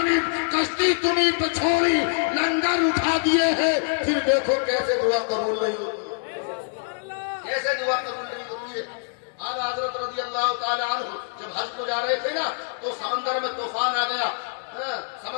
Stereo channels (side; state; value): right; silent; digital silence